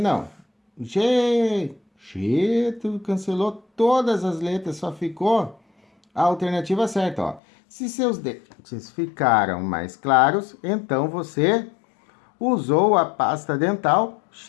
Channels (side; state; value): right; drops out; at 7.4 s